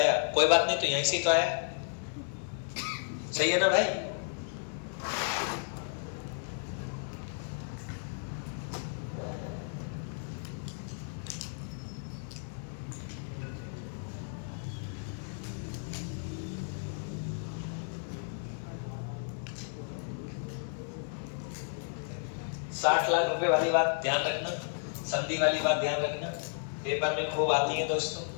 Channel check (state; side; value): silent; right; 56 dB below the other